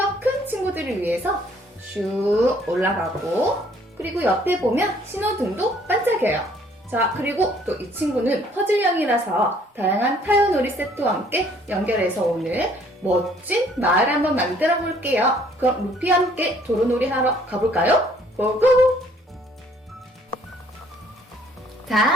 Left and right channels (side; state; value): both; normal; correlation 0.61